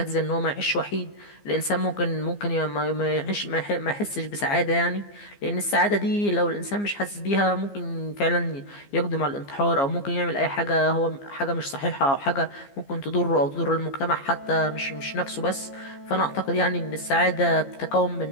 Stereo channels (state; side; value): late; right; 15 ms